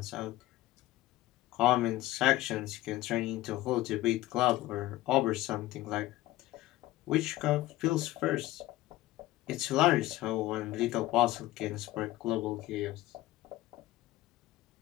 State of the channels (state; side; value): quieter; right; 16.8 dB